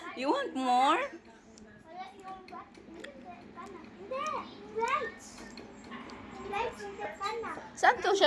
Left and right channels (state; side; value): identical; both; correlation 1.00